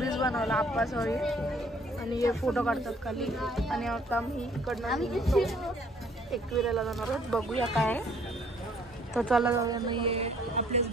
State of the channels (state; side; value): normal; both; correlation 0.61